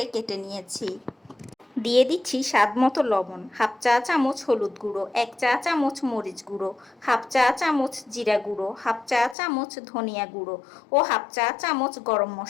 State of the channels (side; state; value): right; drops out; at 9.3 s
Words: কেটে নিয়েছি। দিয়ে দিচ্ছি স্বাদ মতো লবণ, হাফ চা চামচ হলুদ গুঁড়ো, 1 চা চামচ মরিচ গুঁড়ো, হাফ চা চামচ জিরা গুঁড়ো, হাফ চা চামচ ধনিয়া গুঁড়ো ও হাফ চা চামচ গরম